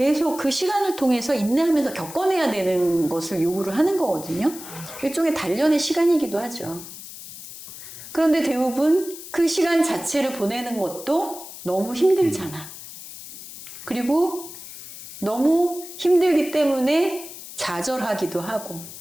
그 시간을 통해서 인내하면서 겪어내야 되는 것을 요구를 하는 거거든요. 일종의 단련의 시간이기도 하죠. 그런데 대부분 그 시간 자체를 보내는 것도 너무 힘들잖아. 그리고 너무 힘들기 때문에 좌절하기도 하고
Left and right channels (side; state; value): left; noise; hiss, 13 dB below the sound